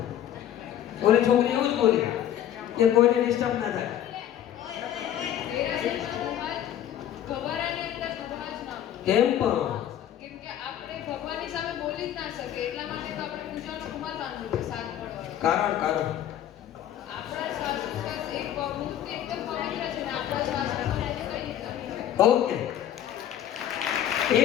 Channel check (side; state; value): right; quieter; 11.0 dB